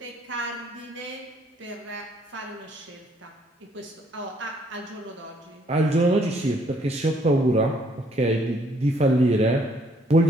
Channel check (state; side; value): normal; both; correlation 0.66